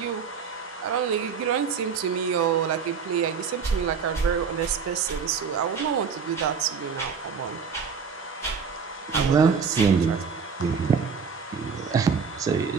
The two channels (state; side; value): quieter; left; 6.0 dB